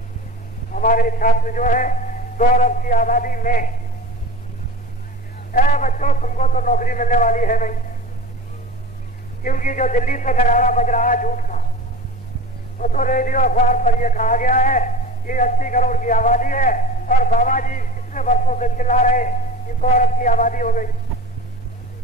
हमारे छात्र जो है 2 अरब की आबादी में, बच्चों तुमको तो नौकरी मिलने वाली है नहीं, क्योंकि जो दिल्ली से नगाड़ा बज रहा है झूठ का, वो तो रेडियो अखबार पर यह कहा गया है कि 80 करोड़ की आबादी है, और बाबा जी कितने वर्षों से चिल्ला रहे कि 2 अरब की आबादी हो गई।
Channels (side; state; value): both; normal; correlation 0.33